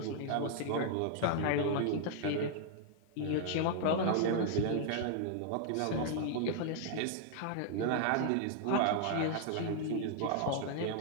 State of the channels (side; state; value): both; different; correlation 0.00